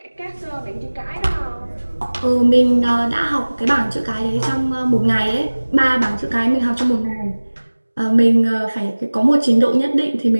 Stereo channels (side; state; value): both; inverted; correlation -1.00